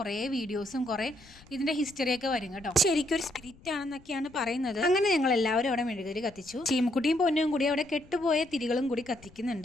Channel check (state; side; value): noise; left; rumble, 25 dB below the sound